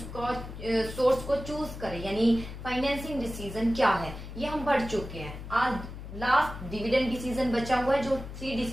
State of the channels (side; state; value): left; noise; hum, 11 dB below the sound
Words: का सोर्स को चूज करें, यानी फाइनेंसिंग डिसीजन क्या है, ये हम पढ़ चुके हैं। आज लास्ट डिविडेंड डिसीजन बचा हुआ है, जो 3